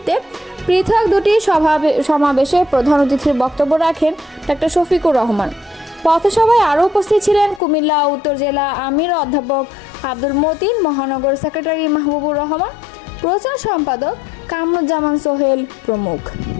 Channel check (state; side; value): drops out; right; at 7.6 s